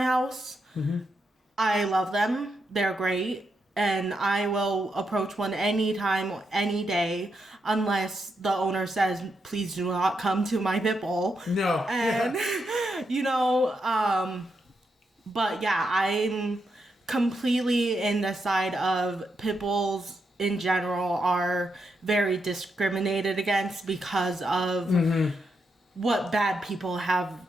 house. I love them. They're great. And I will approach one anytime, any day, unless the owner says, please do not come to my pit bull. No. And, you know, but yeah, I'm completely in the side of pit bulls in general are very discriminated against because of what bad people have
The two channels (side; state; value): both; normal; correlation 0.82